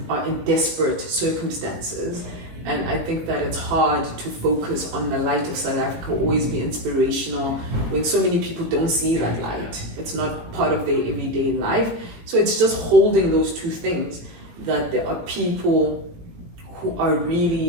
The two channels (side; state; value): left; late; 18 ms